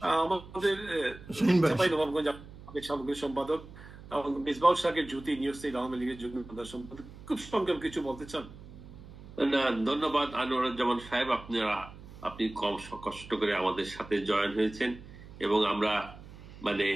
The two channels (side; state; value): right; noise; hum, 17 dB below the sound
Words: আমাদের সামগ্রিক সম্পাদক মিসবাউল শাকের জ্যোতি, নিউজ স্টেট আওয়ামী লীগের যুগ্ম সম্পাদক, খুব সংক্ষেপ কিছু বলতে চান? না, ধন্যবাদ আনোয়ারুজ্জামান সাহেব, আপনি কম কষ্ট করে আমাদের সাথে জয়েন হয়েছেন এবং আমরা মানে